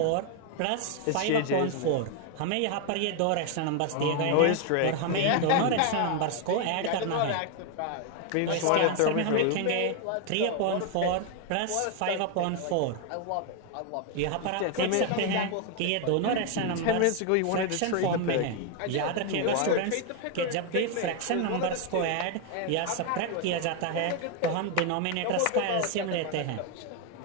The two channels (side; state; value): both; different; correlation 0.01